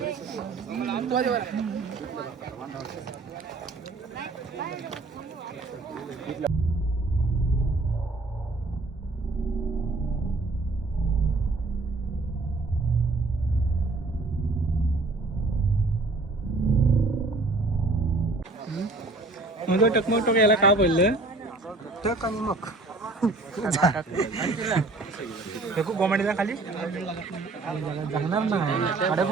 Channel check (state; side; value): quieter; left; 3.4 dB